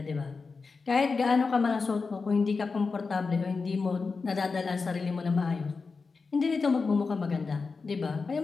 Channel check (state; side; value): quieter; right; 4.5 dB